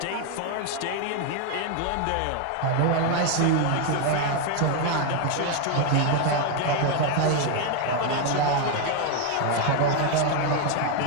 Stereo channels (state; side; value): different; both; correlation 0.01